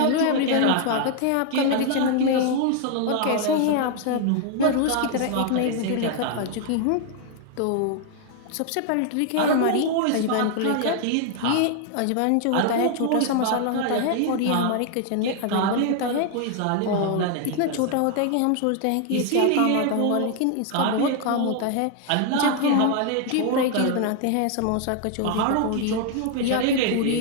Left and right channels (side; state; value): both; different; correlation 0.00